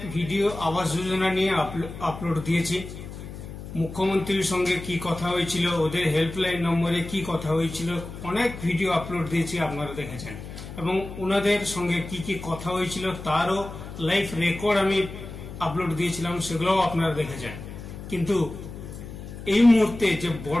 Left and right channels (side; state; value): left; noise; hum, 11 dB below the sound